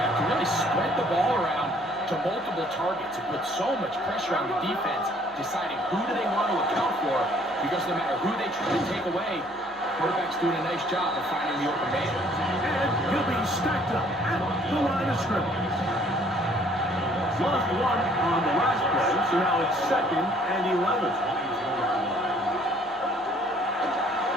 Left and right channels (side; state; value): both; normal; correlation 0.60